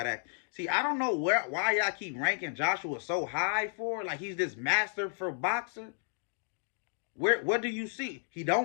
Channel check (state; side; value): silent; right; digital silence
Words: act. See, I don't know why y'all keep ranking Joshua so high for. Like he's this master for boxer. What do you see? He